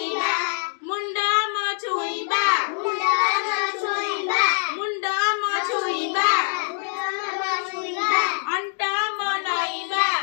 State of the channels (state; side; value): silent; right; 63 dB below the other